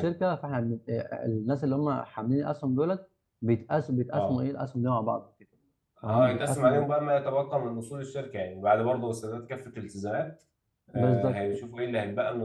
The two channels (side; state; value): both; identical; correlation 1.00